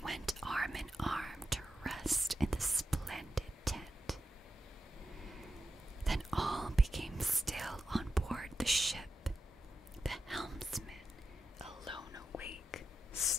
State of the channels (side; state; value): both; normal; correlation 0.89